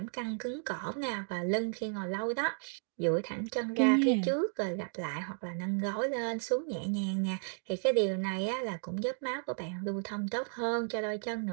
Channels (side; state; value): left; silent; 55 dB below the other